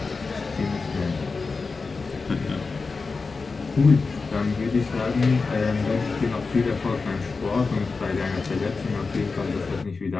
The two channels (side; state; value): right; quieter; 4.3 dB